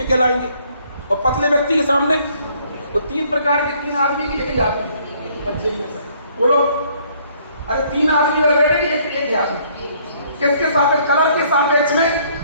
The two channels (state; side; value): inverted; both; correlation -0.63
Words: कहलाएंगे, और पतले व्यक्ति के सामने तो 3 प्रकार के 3 आदमी की एक ही आदमी। बोलो अरे 3 आदमी बैठे कि एक ही आदमी, किसके सापेक्ष, कलर के सापेक्ष में